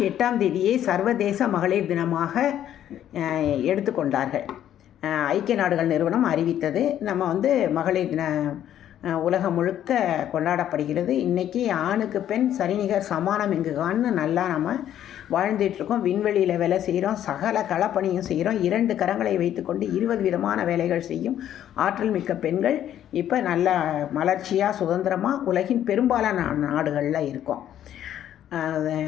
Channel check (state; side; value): quieter; right; 11.0 dB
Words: 8 சர்வதேச மகளிர் தினமாக எடுத்துக்கொண்டார்கள். ஐக்கிய நாடுகள் நிறுவனம் அறிவித்தது. நம்ம மகளிர் தின உலகம் முழுக்க கொண்டாடப்படுகிறது. இன்றைக்கி ஆணுக்கு பெண் சரிநிகர் சமானம் எங்குகான்னு நல்லா நம்ம வாழ்ந்துட்டுருக்கோம். விண்வெளியில் வேலை செய்கிறோம், சகல களப்பணியும் செய்கிறோம். 2 கரங்களை வைத்துக்கொண்டு 20 விதமான வேலைகள் செய்யும் ஆற்றல் மிக்க பெண்கள் இப்போ நல்ல மலர்ச்சியாக சுதந்திரமாக உலகின் பெரும்பாலான நாடுகளில் இருக்கோம்.